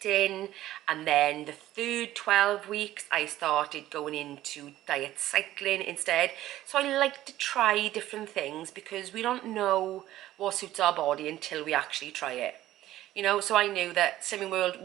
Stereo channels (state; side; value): quieter; left; 14.4 dB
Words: And then the third 12 weeks, I started going into diet cycling instead. So I like to try different things, because we don't know what suits our body until we actually try it. You know, so I knew that Slimming World